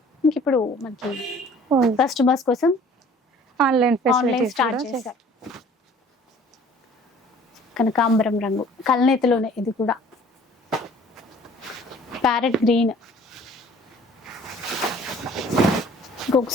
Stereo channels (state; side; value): normal; both; correlation 0.52